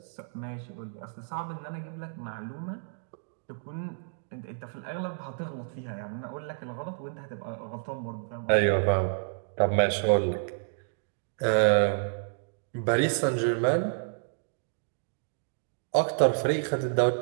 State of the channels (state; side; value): silent; left; digital silence